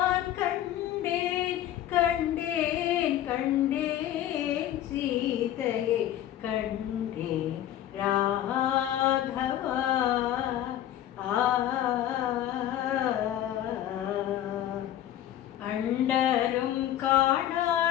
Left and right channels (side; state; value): right; quieter; 12.1 dB